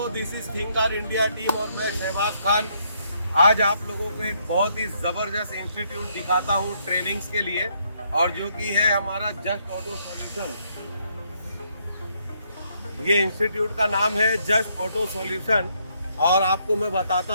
this is think car India team और मैं शहबाज खान। आज आप लोगों को एक बहुत ही जबरदस्त इंस्टीट्यूट दिखाता हूँ ट्रेनिंग्स के लिए, और जो कि है हमारा जस्ट ऑटो सॉल्यूशन। ये इंस्टीट्यूट का नाम है जस्ट ऑटो सॉल्यूशन, और आपको मैं बताता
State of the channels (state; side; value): inverted; both; correlation -0.72